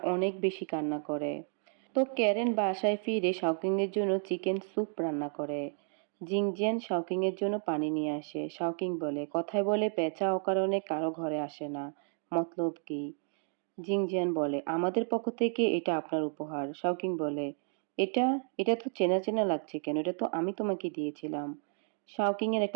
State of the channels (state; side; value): silent; left; 56 dB below the other